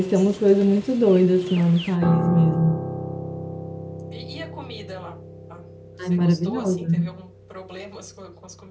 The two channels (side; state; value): both; identical; correlation 1.00